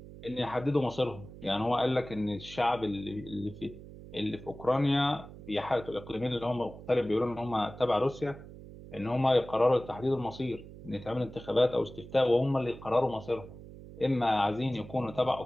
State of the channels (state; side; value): noise; right; hum, 16 dB below the sound